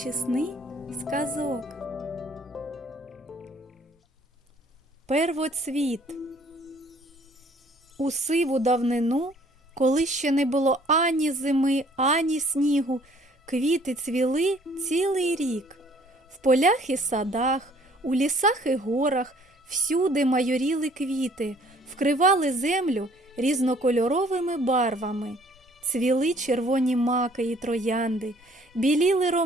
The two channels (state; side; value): normal; both; correlation 0.58